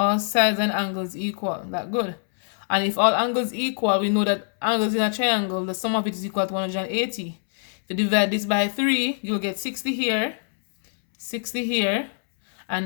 sides and angles equal. That good. And if all angles equal, we know that angles in a triangle, the sum of it is equal to 180. If you divide this by 3, you'll get 60 here, 60 here,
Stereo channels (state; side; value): silent; right; 63 dB below the other